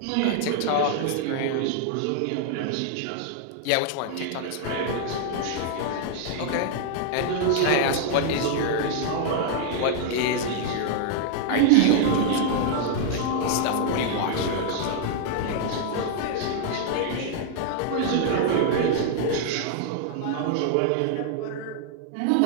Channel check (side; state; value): both; different; correlation 0.00